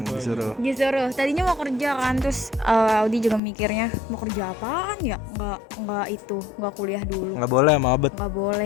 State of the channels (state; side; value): drops out; right; at 3.4 s